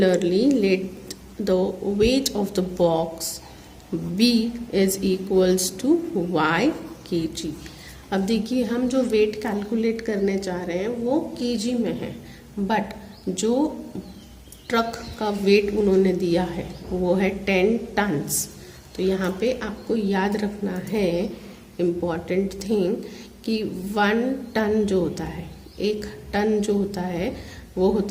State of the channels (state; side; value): identical; both; correlation 1.00